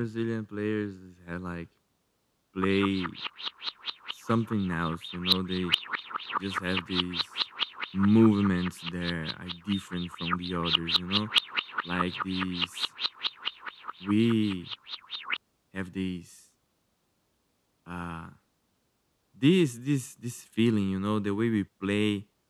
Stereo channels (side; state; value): both; identical; correlation 1.00